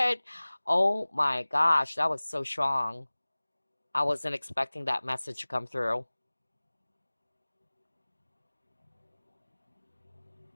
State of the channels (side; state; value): both; inverted; correlation -1.00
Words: Oh my gosh, that was so strong. I wasn't expecting that message to come through.